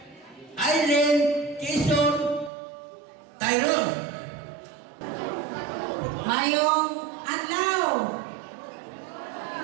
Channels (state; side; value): drops out; left; at 2.5 s